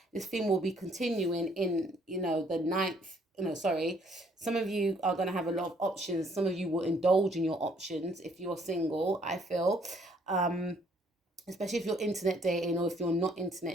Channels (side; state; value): both; normal; correlation 0.64